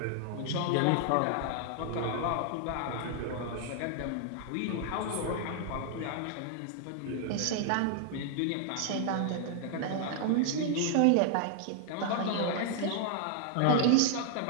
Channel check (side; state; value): both; different; correlation 0.00